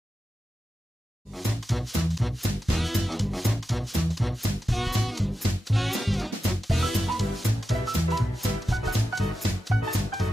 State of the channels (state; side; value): normal; both; correlation 0.91